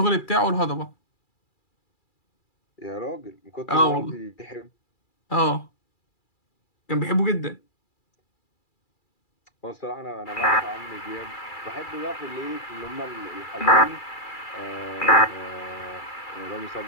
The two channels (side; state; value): right; late; 2.3 ms